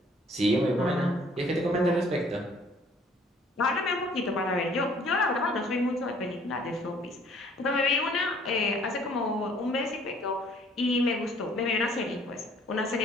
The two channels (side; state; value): both; normal; correlation 0.58